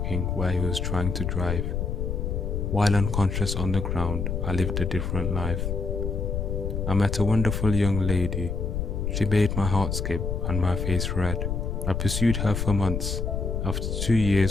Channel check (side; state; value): left; noise; rumble, 1 dB below the sound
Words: where he was trying to drive. While unconscious on the ground, I lived a different life. I met a wonderful young lady. She made my heart skip and my face red. I pursued her for months. After 2